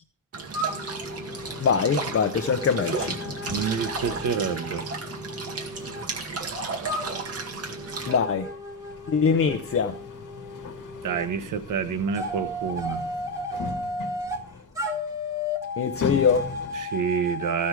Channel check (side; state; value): both; normal; correlation 0.03